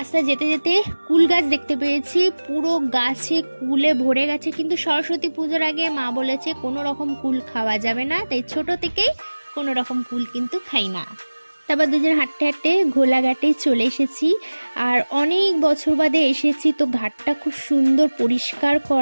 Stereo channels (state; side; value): inverted; both; correlation -1.00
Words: যেতে যেতে কুল গাছ দেখতে পেয়েছি, পুরো গাছে কুলে ভরে গেছে। কিন্তু সরস্বতী পুজোর আগে মা বলেছে কোনো রকম কুল খাওয়া যাবে না, তাই ছোট থেকেই কোনো রকম কুল কিন্তু খাই না। তারপর দুজন হাঁটতে হাঁটতে ঘোলাঘাটে চলে এসেছি। আর অনেক বছর বাদে এসেছি, তো ঘাটটা খুব সুন্দর পরিষ্কার